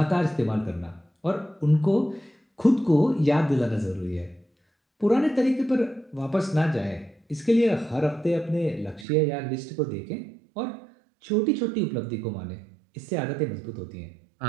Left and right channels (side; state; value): left; drops out; at 9.1 s